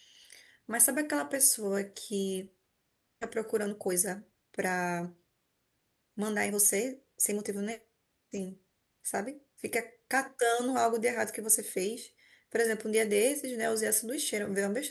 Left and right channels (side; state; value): both; identical; correlation 1.00